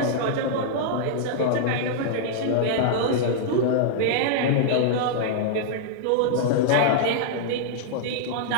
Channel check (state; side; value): different; both; correlation -0.01